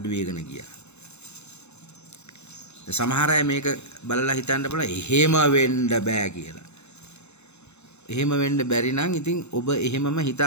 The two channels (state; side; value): late; right; 0.81 ms